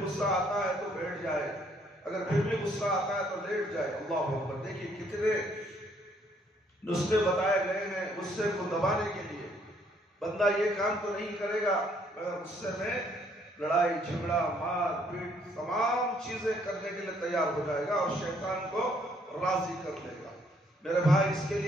غصہ آتا ہے تو بیٹھ جائے، اگر پھر بھی غصہ آتا ہے تو لیٹ جائے۔ اللہ اکبر، دیکھیے کتنے نسخے بتائے گئے ہیں غصے کو دبانے کے لیے۔ بندہ یہ کام تو نہیں کرے گا مگر غصے میں لڑائی جھگڑا مار پیٹ تمام چیزیں کرنے کے لیے تیار ہو جائے گا اور شیطان کو راضی کر لے گا۔ میرے بھائی، اس کے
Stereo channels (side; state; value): both; normal; correlation 0.67